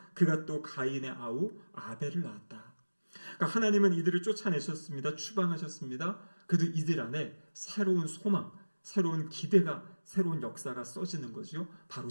그가 또 가인의 아우 아벨을 낳았다. 그러니까 하나님은 이들을 쫓아내셨습니다. 추방하셨습니다. 그래도 이들 안에 새로운 소망, 새로운 기대가, 새로운 역사가 써지는 거죠. 바로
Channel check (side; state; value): both; inverted; correlation -1.00